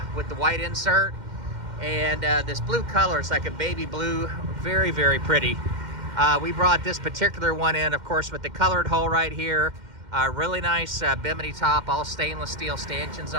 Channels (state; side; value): late; left; 2.1 ms